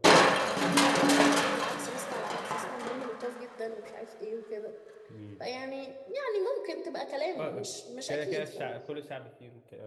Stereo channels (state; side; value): identical; both; correlation 1.00